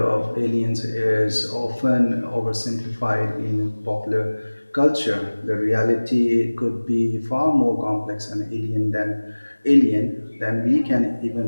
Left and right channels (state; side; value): inverted; both; correlation -1.00